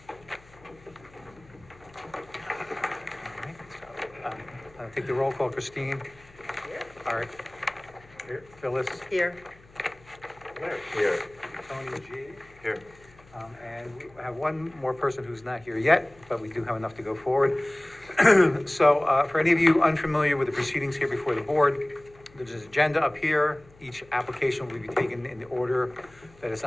All right, so, I'll take the roll call. Christine? Here. Art? Here. Phyllis? Here. Larry? Here. Tony G? Here. And we have one more person who's not here yet, but we do have enough to go forward. So for any of you unfamiliar with the proceedings here before the board, there's an agenda up here. Each application will be taken in the order that is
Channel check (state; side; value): noise; left; hum, 26 dB below the sound